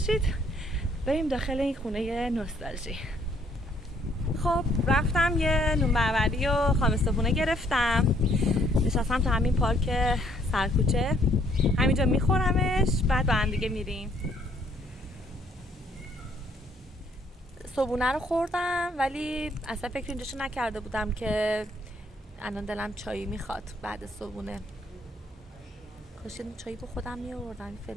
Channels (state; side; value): normal; both; correlation 0.66